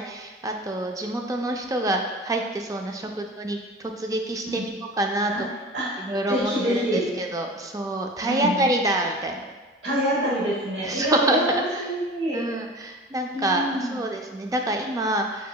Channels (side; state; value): both; normal; correlation 0.37